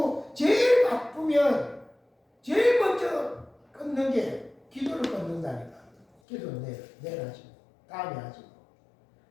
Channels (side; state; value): right; drops out; at 6.1 s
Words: 제일 바쁘면 제일 먼저 끊는 게 기도를 끊는다니까. 기도 내일 하지 뭐. 다음에 하지 뭐.